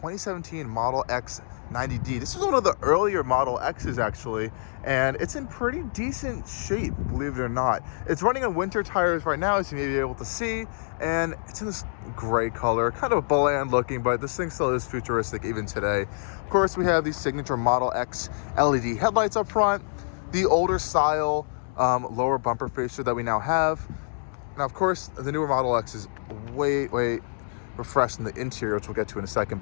Model X 90D. This is one of the earlier Model X's actually, and it's in pretty decent shape, believe it or not. It's running on winter tires right now, as you may be able to see, and it's in this gray color, kind of bland looking, but this thing still is futuristic even today. Of course, we have the signature Model X LED headlights up front, the older style lower bumper fascia that we now have. Now, of course, the newer Model X is way refreshed in the interior, which we'll get to in a second,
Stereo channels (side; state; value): right; silent; digital silence